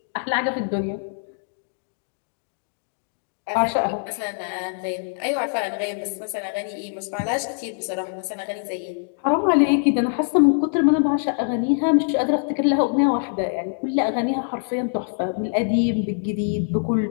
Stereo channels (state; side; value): silent; right; digital silence